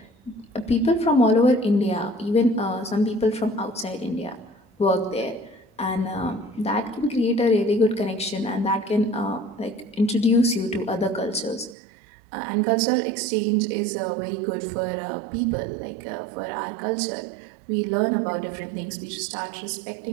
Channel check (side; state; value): left; drops out; at 11.8 s